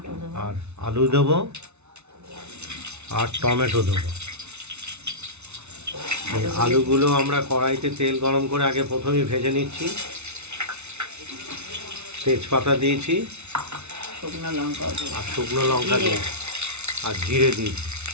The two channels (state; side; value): late; left; 0.81 ms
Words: আর আলু দেবো, আর টমেটো দেবো। এই আলুগুলো আমরা কড়াইতে তেল গরম করে আগে প্রথমেই ভেজে নিচ্ছি। তেজপাতা দিয়েছি, শুকনো লঙ্কা দিয়েছি, আর জিরে দিয়েছি।